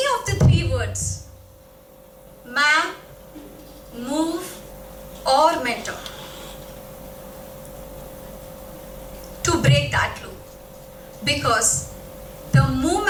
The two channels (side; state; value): both; identical; correlation 1.00